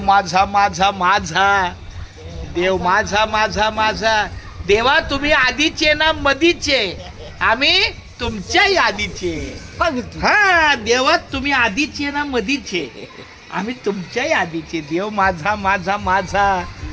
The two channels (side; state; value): both; identical; correlation 1.00